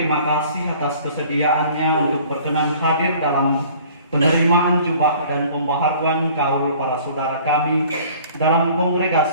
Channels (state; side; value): inverted; both; correlation -0.51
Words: kasih atas kesediaannya untuk berkenan hadir dalam penerimaan jubah dan pembaharuan kaul para saudara kami dalam